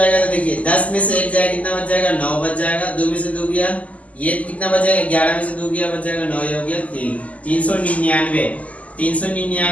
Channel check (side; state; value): right; late; 0.071 ms